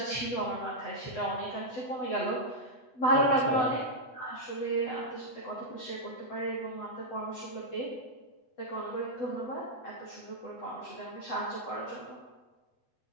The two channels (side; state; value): right; late; 8.0 ms